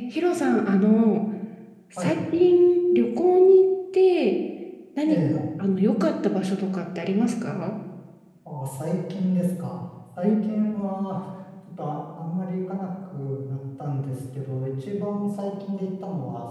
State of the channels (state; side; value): identical; both; correlation 1.00